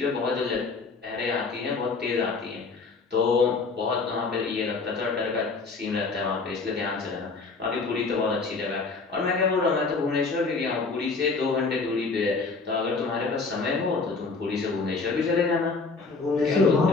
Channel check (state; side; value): quieter; right; 4.2 dB